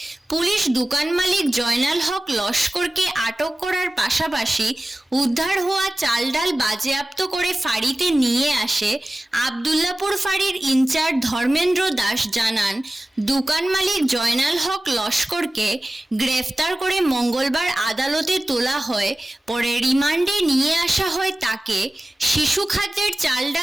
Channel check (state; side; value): normal; both; correlation 0.96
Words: পুলিশ দোকান মালিক জয়নাল হক লস্করকে আটক করার পাশাপাশি উদ্ধার হওয়া চাল ডাল বাজেয়াপ্ত করে ফাঁড়িতে নিয়ে আসে। আবদুল্লাপুর ফাঁড়ির ইনচার্জ ধর্মেন্দ্র দাস জানান, দোকান মালিক জয়নাল হক লস্করকে গ্রেফতার করে মঙ্গলবার আদালতে তোলা হয়। পরে রিমান্ডে নিয়ে আসা হয় তাকে। শিশু খাদ্যের চাল